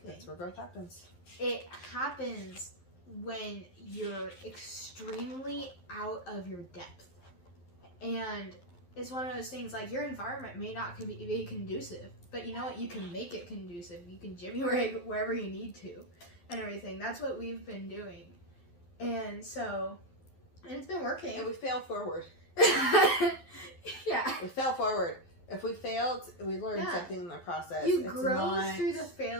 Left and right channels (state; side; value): late; right; 11 ms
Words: That's where growth happens. It happens when you're extremely out of your depth. And it's one of those things, like, your environment may not be conducive, but you know what? You can make it conducive. You can jimmy rig wherever you need to and everything. That's what we've been doing. And so, and it's been working. And we fail forward. Yeah. We fail forward. If we failed, we learned something in the process. You grow through the